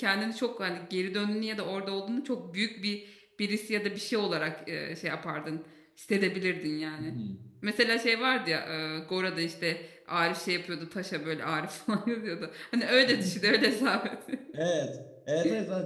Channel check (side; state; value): both; identical; correlation 1.00